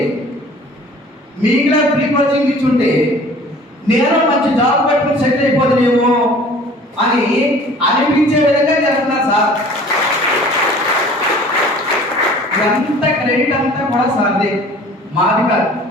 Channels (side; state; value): both; normal; correlation 0.48